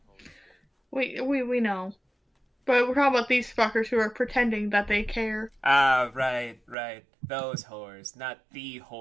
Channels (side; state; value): left; drops out; at 6.8 s